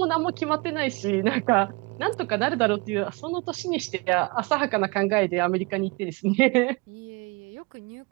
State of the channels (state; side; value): quieter; left; 28.0 dB